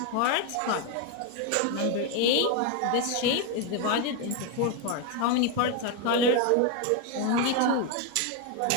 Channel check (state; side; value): different; both; correlation 0.02